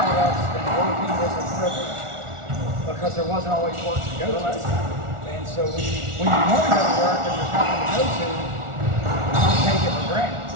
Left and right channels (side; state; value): left; late; 1.4 ms